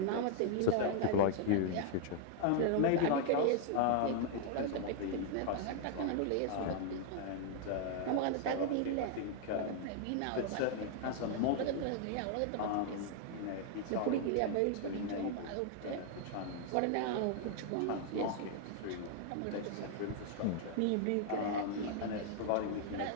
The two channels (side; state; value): both; different; correlation 0.00